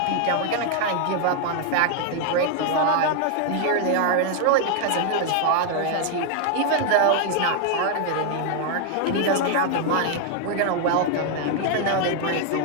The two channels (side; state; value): both; different; correlation 0.00